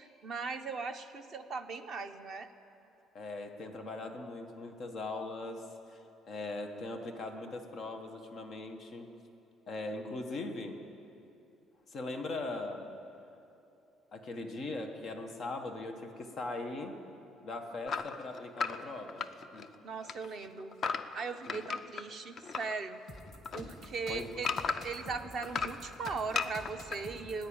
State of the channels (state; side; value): normal; both; correlation 0.68